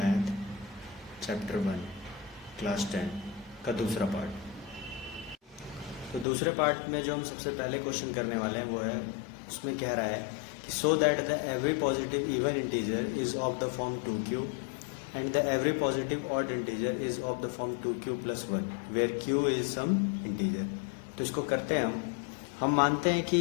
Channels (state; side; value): drops out; right; at 6.2 s